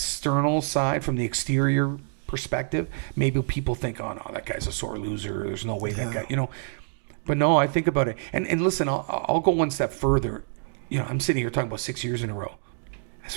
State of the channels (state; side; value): silent; left; digital silence